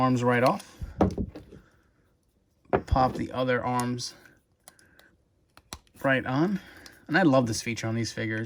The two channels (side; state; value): both; identical; correlation 1.00